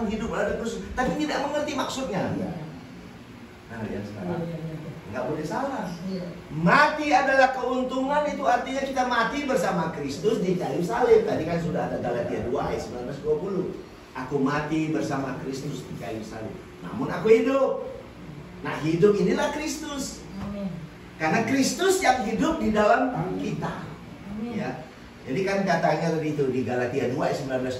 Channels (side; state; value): both; identical; correlation 1.00